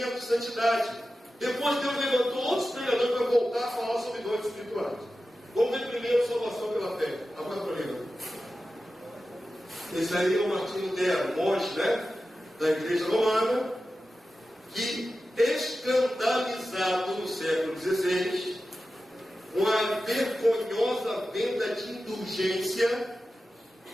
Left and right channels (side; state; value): both; normal; correlation 0.93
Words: e santidade. Depois Deus levantou outros pregadores para voltar a falar sobre dons espirituais. Vamos ver primeiro salvação pela fé. Agora para mim. Esse aí é o Martinho Lutero, monge, né? Da igreja romana, que escandalizado no século XVI, com a vergonhosa venda de indulgência,